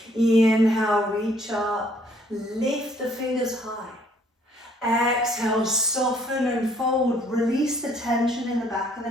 Inhale, reach up, lift the fingers high. Exhale, soften and fold, release the tension in the back of the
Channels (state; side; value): normal; both; correlation 0.63